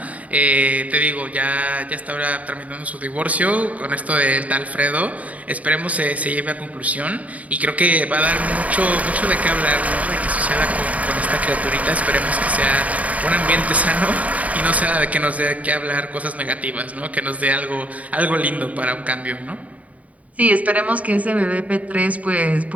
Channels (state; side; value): late; left; 0.070 ms